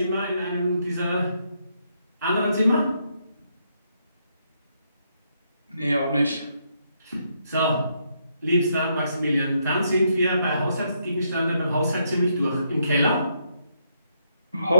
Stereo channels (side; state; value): both; inverted; correlation -0.76